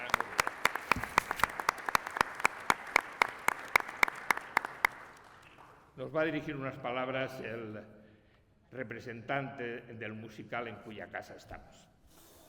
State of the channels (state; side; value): identical; both; correlation 1.00